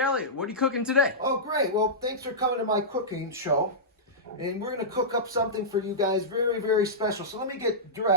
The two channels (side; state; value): both; normal; correlation -0.14